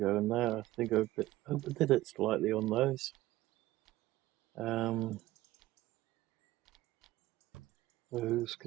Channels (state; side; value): quieter; left; 16.6 dB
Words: in there. I think I overdid it slightly on those. Those